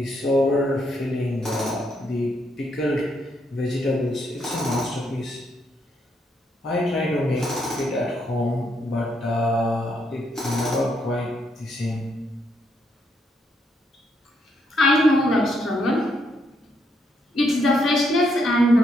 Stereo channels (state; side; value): normal; both; correlation 0.76